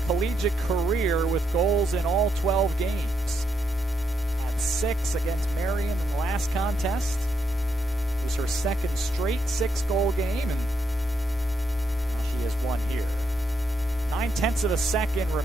collegiate career with goals in all 12 games. Had 6 against Marion in the last contest. It was her second straight 6-goal game, and now she has one here. 9/10 of a second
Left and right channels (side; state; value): both; normal; correlation 0.79